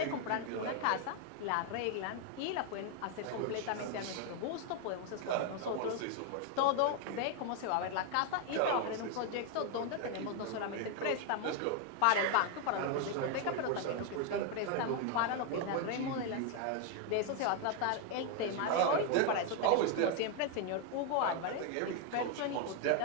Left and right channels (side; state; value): both; different; correlation 0.01